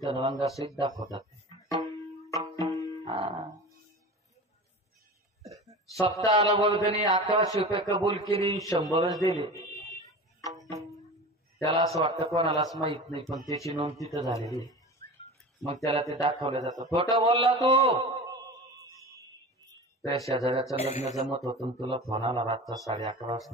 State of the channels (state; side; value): normal; both; correlation 0.33